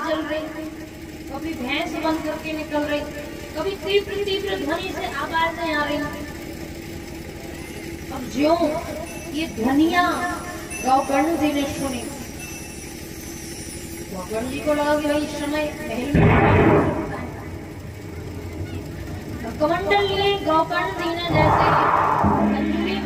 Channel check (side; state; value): both; identical; correlation 1.00